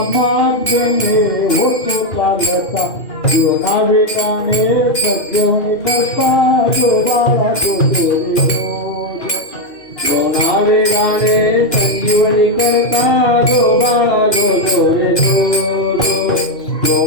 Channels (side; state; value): right; late; 2.4 ms